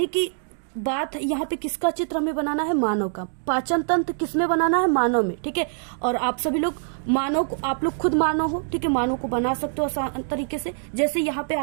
कि बात यहाँ पे किसका चित्र हमें बनाना है, मानव का। पाचन तंत्र किसमें बनाना है, मानव में, ठीक है। और आप सभी लोग मानव को, आप लोग खुद मानव हो, ठीक है, मानव को बना सकते हो आसान तरीके से। जैसे यहाँ पे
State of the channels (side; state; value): left; silent; digital silence